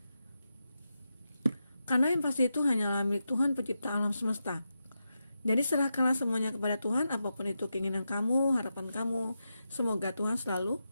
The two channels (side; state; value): both; inverted; correlation -0.88